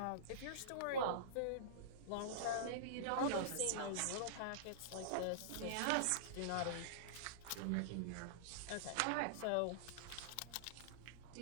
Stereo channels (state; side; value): different; both; correlation -0.03